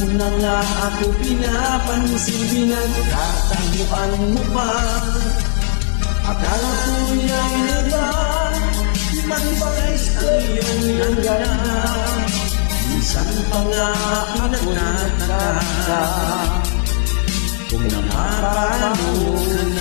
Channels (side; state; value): right; silent; digital silence